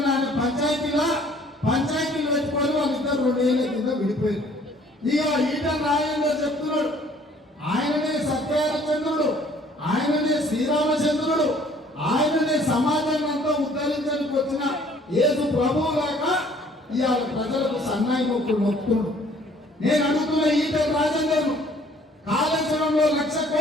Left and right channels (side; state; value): both; normal; correlation 0.57